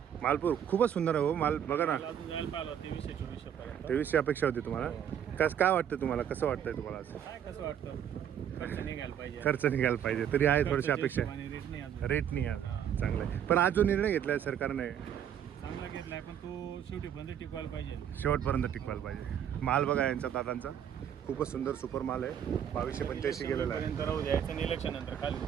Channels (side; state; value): left; quieter; 9.3 dB